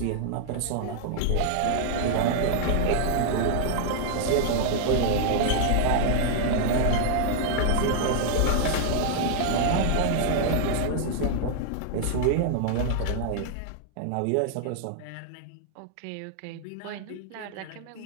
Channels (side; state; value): both; different; correlation -0.01